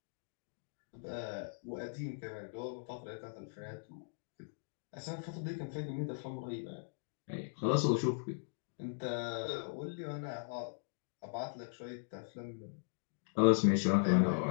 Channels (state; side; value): silent; right; digital silence